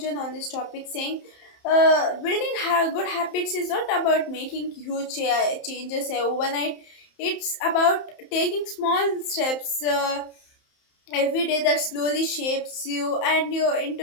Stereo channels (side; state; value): right; late; 31 ms